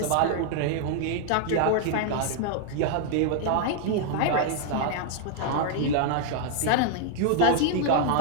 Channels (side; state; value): both; different; correlation 0.00